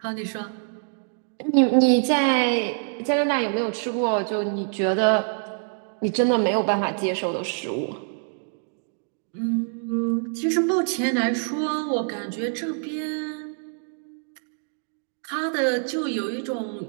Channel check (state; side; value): silent; left; 62 dB below the other